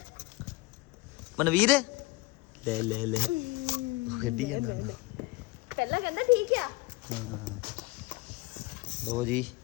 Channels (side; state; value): right; quieter; 22.4 dB